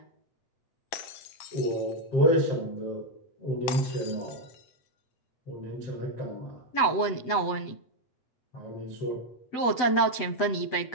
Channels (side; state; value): right; late; 8.0 ms